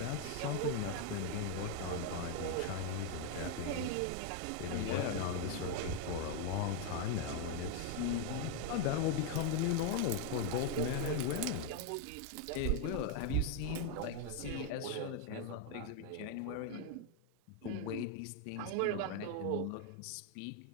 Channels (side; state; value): both; different; correlation 0.01